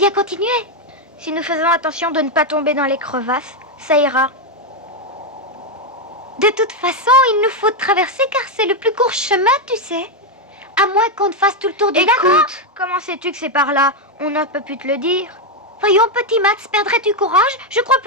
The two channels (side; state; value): both; normal; correlation 0.04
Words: continuer? Si nous faisons attention de ne pas tomber dans les crevasses, ça ira. De toute façon, il nous faut traverser car c'est le plus court chemin, tu sais. À moins qu'on ne fasse tout le tour du lac. Écoute, comment sais-tu que c'est par là? On n'a pas pu te le dire. Voyons, petit Max, perdrais-tu courage? Je crois